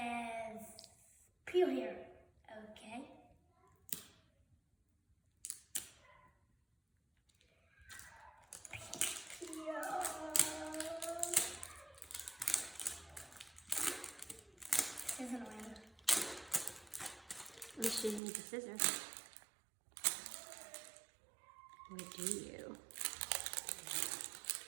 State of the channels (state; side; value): drops out; left; at 18.2 s